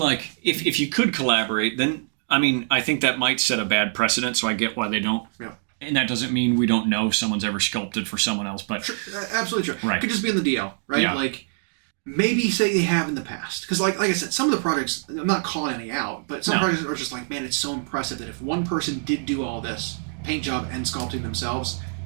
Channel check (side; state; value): left; silent; digital silence